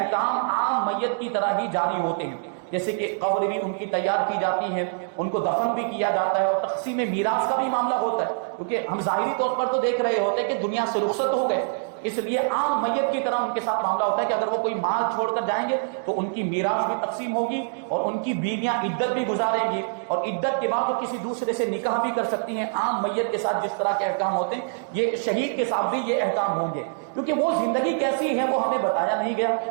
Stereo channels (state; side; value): silent; left; digital silence